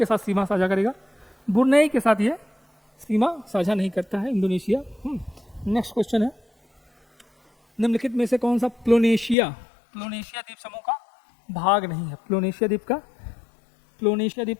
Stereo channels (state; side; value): drops out; right; at 9.3 s